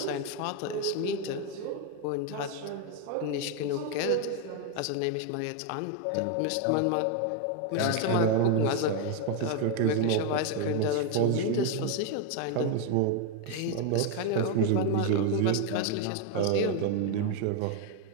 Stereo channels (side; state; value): both; different; correlation 0.01